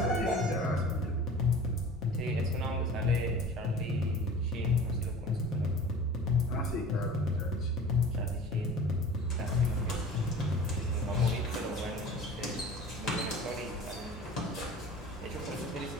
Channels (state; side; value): normal; both; correlation 0.41